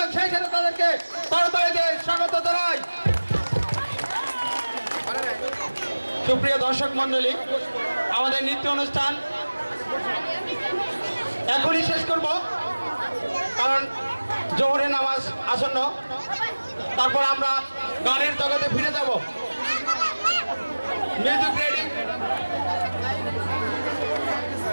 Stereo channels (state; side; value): inverted; both; correlation -1.00